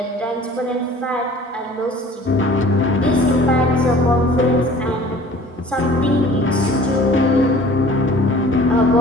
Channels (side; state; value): both; normal; correlation 0.48